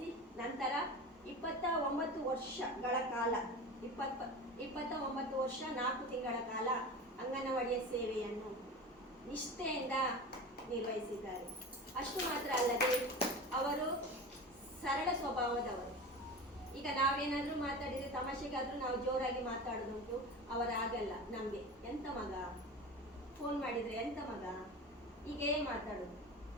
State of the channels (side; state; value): both; normal; correlation 0.30